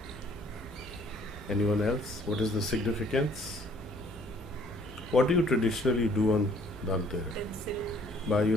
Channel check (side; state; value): both; normal; correlation 0.59